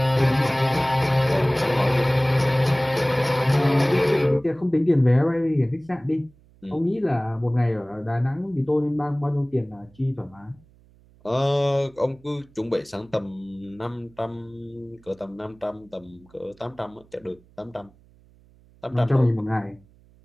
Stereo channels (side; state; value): right; noise; hum, 29 dB below the sound